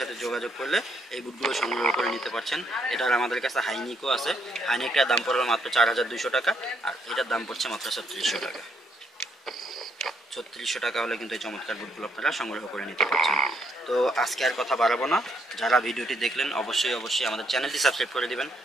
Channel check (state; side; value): normal; both; correlation 0.73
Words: যোগাযোগ করলে এই বুটগুলো সংগ্রহ করে নিতে পারছেন। এটার আমাদের কাছে হাইনিকও আছে, হাইনিকটার দাম পড়বে মাত্র 4200 টাকা, আর এটার দাম পড়ছে মাত্র 3600 টাকা। 3600 টাকা হলে কিন্তু এই চমৎকার বুটগুলো আপনারা সংগ্রহ করে নিতে পারছেন। তো আজকে আর কথা বাড়াবো না, যারা ভিডিওটি দেখলেন অবশ্যই অবশ্যই আমাদের চ্যানেলটি সাবস্ক্রাইব করে দিবেন,